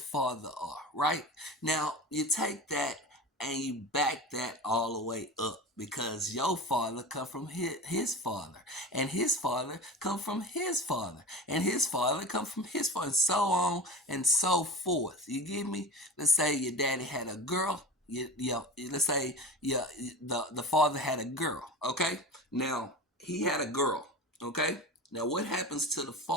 are, right? Now, you take that and you back that all the way up because your father come from his father, and his father come from his father, and his father come from his father, and so on and so forth. You get me? Let's say your daddy had a girl. Let's say the father had a girl. Okay, now he had a girl. Okay, now what happens to the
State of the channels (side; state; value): both; normal; correlation 0.31